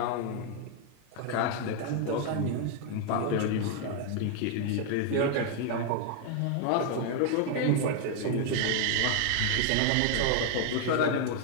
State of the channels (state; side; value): different; both; correlation 0.00